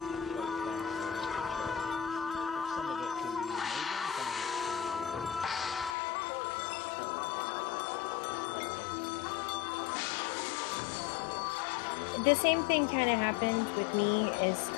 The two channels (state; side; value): drops out; right; at 6.0 s